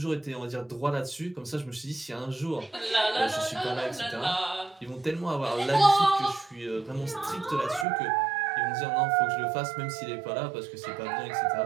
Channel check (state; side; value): drops out; left; at 7.9 s